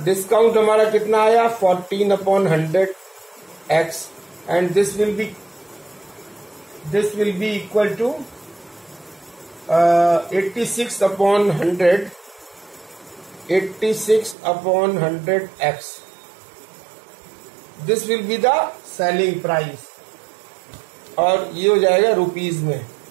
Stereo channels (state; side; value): drops out; left; at 14.4 s